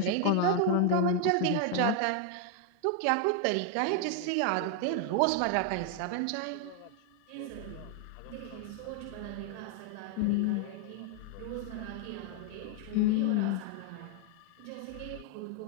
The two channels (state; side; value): different; both; correlation 0.00